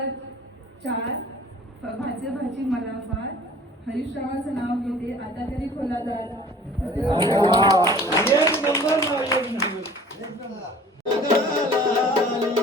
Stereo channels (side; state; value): both; normal; correlation 0.47